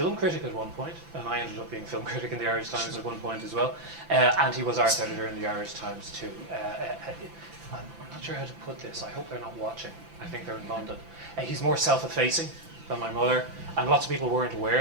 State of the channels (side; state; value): left; late; 5.9 ms